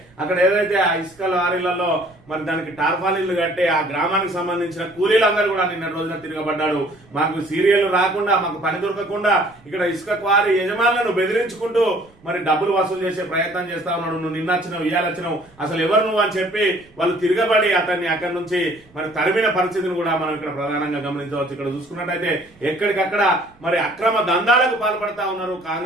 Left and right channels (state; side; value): noise; right; rumble, 29 dB below the sound